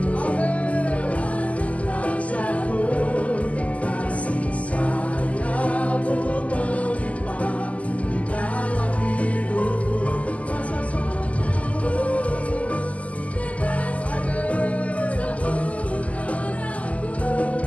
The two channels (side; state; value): right; late; 0.068 ms